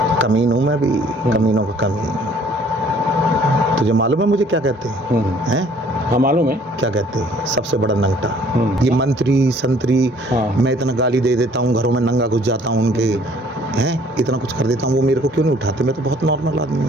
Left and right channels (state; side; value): normal; both; correlation 0.57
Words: कमीन हूँ मैं भी, कमीनों का कमीन। तुझे मालूम है मुझे क्या कहते हैं? हाँ मालूम है। क्या कहते हैं? सबसे बड़ा नंगटा। ये मंत्री संतरी, मैं इतना गाली दे देता हूँ, घरों में नंगा घुस जाता हूँ उनके, हैं इतना कुछ कर देता हूँ, वो मेरे को क्यों नहीं उठाते? मैं तो बहुत नॉर्मल आदमी